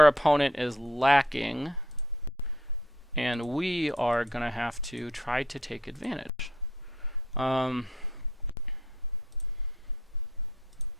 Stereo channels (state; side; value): normal; both; correlation 0.64